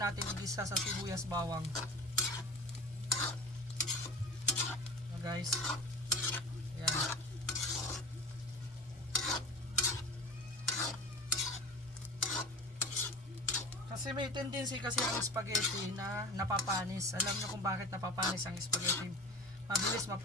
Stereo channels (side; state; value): both; normal; correlation 0.35